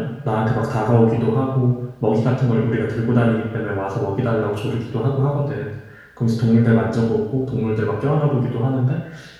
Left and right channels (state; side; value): identical; both; correlation 1.00